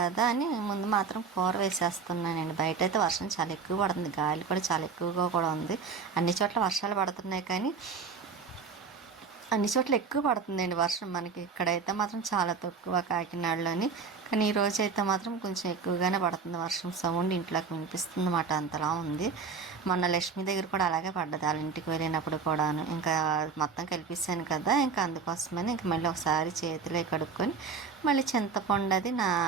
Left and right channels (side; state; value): left; quieter; 5.4 dB